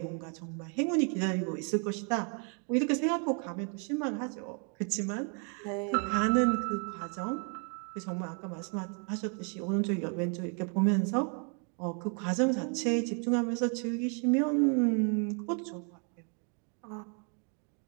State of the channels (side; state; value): left; quieter; 39.5 dB